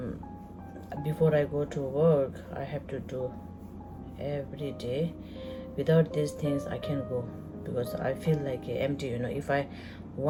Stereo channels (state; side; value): identical; both; correlation 1.00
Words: before I go to work I have to do every day. Without these things I can't go, because I feel like empty, if I